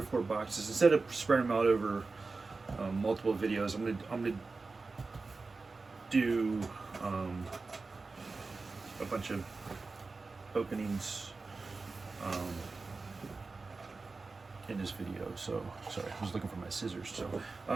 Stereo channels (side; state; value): left; quieter; 3.9 dB